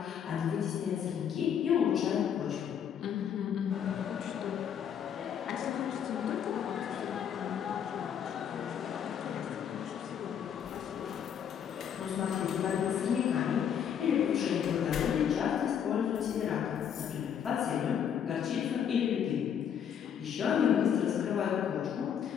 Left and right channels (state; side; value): quieter; right; 8.5 dB